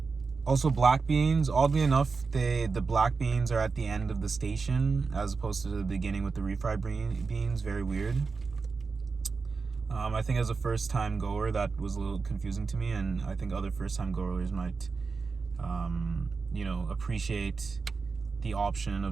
Also black beans. Oddly enough, the black beans are at the end of the station as opposed to the beginning with the refried beans. Very weird. I think as a first time goer that was a little confusing to me, and I think other first time goers might you know, appreciate the option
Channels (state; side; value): quieter; left; 4.6 dB